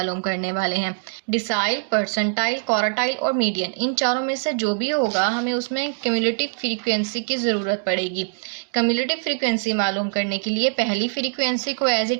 करने वाले हैं। डिसाइल, परसेंटाइल, क्वार्टाइल और मीडियन, इन चारों में से जो भी होगा हमें उसमें क्यूमुलेटिव फ्रीक्वेंसी की ज़रूरत पड़ेगी। क्यूमुलेटिव फ्रीक्वेंसी मालूम करने के लिए पहली फ्रीक्वेंसी को एज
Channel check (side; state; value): left; silent; digital silence